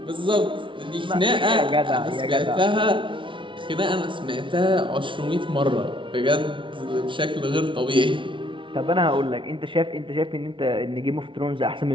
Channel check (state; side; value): late; left; 0.25 ms